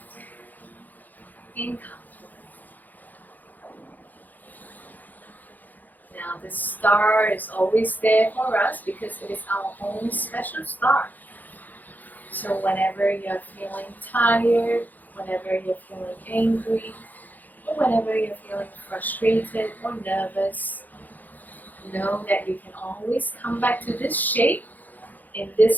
and comfortable. Now the star is always there for us because it is our own special star. So whenever you're feeling tired, whenever you're feeling angry, or whenever you're feeling frustrated or nervous, know that you can always come back to this shape, in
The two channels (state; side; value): late; right; 0.084 ms